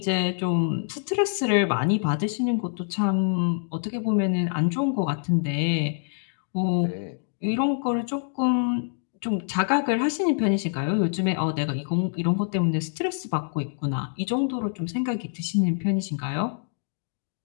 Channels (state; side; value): silent; right; digital silence